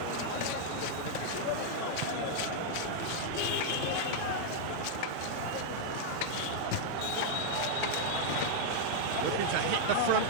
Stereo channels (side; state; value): both; different; correlation -0.01